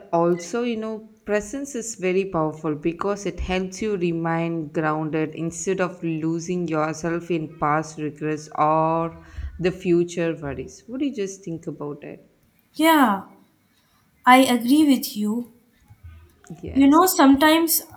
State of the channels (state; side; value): identical; both; correlation 1.00